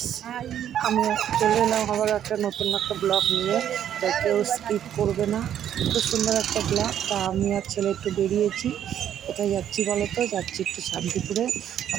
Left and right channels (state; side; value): quieter; left; 10.2 dB